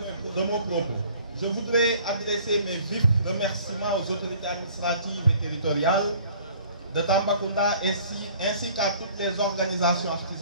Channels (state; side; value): inverted; both; correlation -0.53